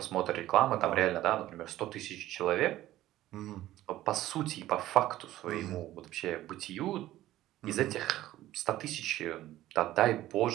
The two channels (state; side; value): quieter; left; 14.8 dB